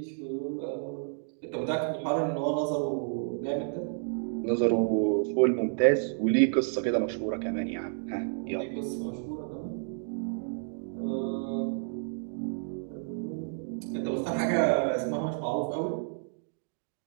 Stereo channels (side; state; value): left; silent; digital silence